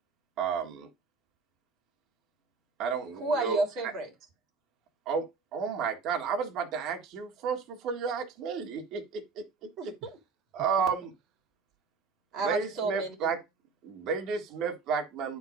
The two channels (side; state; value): left; quieter; 4.8 dB